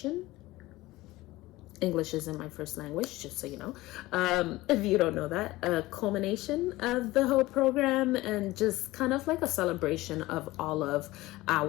English isn't my first language, just so you know. If you don't know that, a culmination of the whole program, and just kind of like a celebration of all of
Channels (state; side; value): quieter; right; 18.6 dB